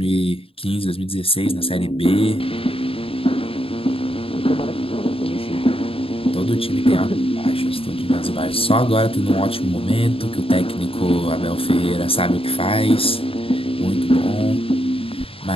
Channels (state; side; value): late; right; 0.27 ms